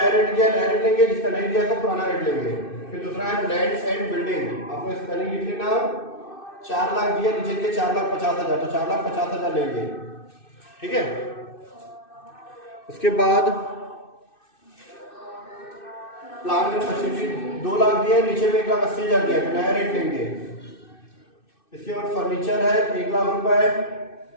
रेट दिया नया रेट लेंगे, जिसका नहीं दिया तो पुराना रेट लेंगे। फिर दूसरा है लैंड एंड बिल्डिंग, आपको स्पेलिंग लिख लेना, 4 लाख दिया, नीचे दिए 4,50,000, तो 4,50,000 लेंगे, ठीक है। उसके बाद प्लांट एंड मशीनरी 2 लाख दिया, नीचे में 1,80,000 दिया, तो नया रेट लेंगे। इसके बाद फर्नीचर है 1 लाख रुपए,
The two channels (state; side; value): late; right; 2.6 ms